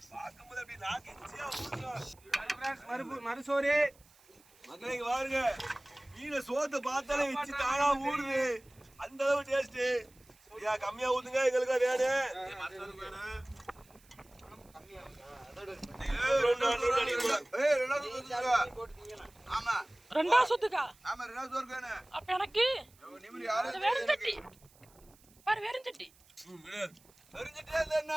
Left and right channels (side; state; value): right; noise; hiss, 28 dB below the sound